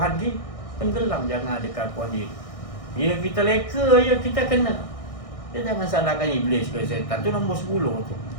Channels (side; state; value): right; late; 1.6 ms